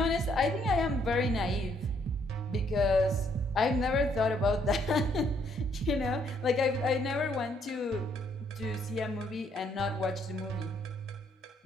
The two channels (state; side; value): normal; both; correlation 0.69